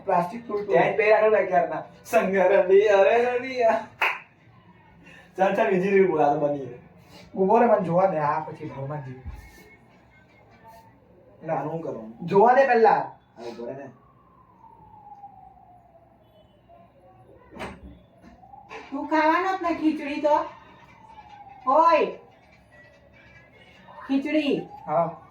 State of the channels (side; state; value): both; identical; correlation 1.00